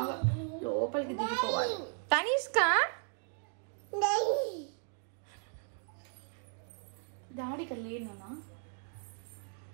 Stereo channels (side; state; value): left; silent; 54 dB below the other